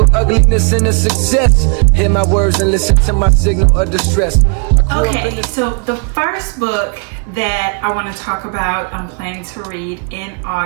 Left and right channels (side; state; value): left; quieter; 38.6 dB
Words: ugliness in the success. Hear my words and listen to my signal of distress. Okay, so the first book that I want to talk about, I'm planning to read in